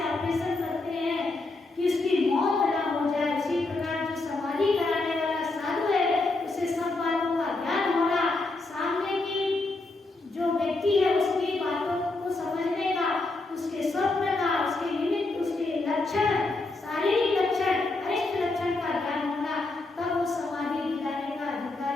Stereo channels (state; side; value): quieter; right; 3.2 dB